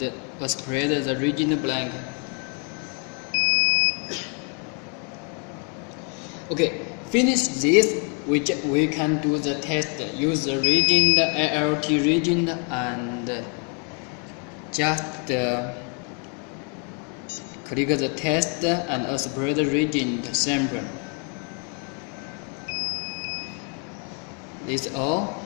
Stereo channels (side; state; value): right; quieter; 38.1 dB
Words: operate the region blank. Okay, finish this. We can do the test. Use the region, the ALT region, and just click the test and separate the region sample. This is all.